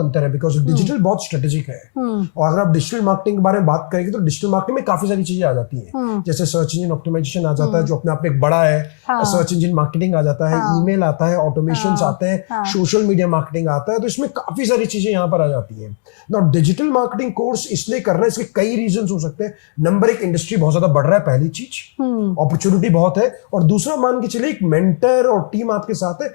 है, बिकॉज डिजिटल बहुत स्ट्रेटेजिक है। और अगर आप डिजिटल मार्केटिंग के बारे में बात करेंगे तो डिजिटल मार्केटिंग में काफी सारी चीजें आ जाती है। जैसे सर्च इंजन ऑप्टिमाइजेशन आ जाता है, जो अपने आप में एक बड़ा है। सर्च इंजन मार्केटिंग आ जाता है, ईमेल आता है, ऑटोमेशन आते हैं, सोशल मीडिया मार्केटिंग आता है। तो इसमें काफी सारी चीजें यहां पर आ जाती हैं। नाउ डिजिटल मार्केटिंग कोर्स इसलिए करना है, इसके कई रीजंस हो सकते हैं। नंबर एक, इंडस्ट्री बहुत ज्यादा बढ़ रहा है, पहली चीज, अपॉर्चुनिटी बहुत है। और दूसरा, मान के चलिए एक मेंटर और टीम आपके साथ है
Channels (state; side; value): silent; right; digital silence